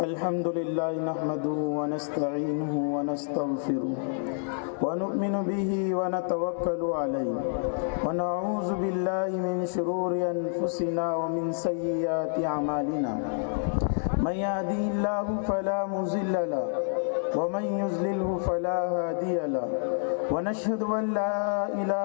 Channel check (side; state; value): right; silent; digital silence